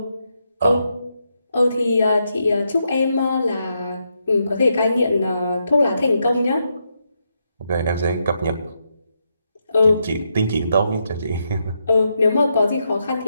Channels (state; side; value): inverted; both; correlation -0.81